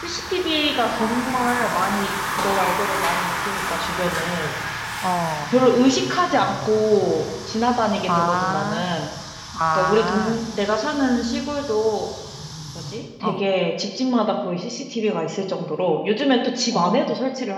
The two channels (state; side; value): identical; both; correlation 1.00